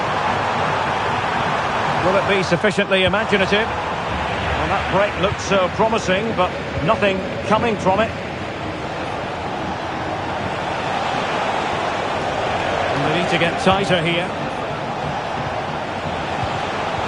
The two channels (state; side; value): identical; both; correlation 1.00